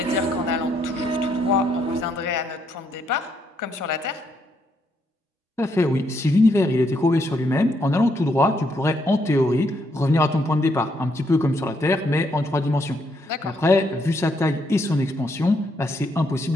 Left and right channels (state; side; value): normal; both; correlation 0.75